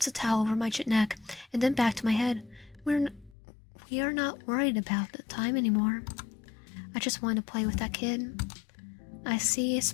a towel over my neck and then back to my head. We are not worried about the time anymore. I just want to play with that kid. I see a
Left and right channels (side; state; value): right; drops out; at 3.4 s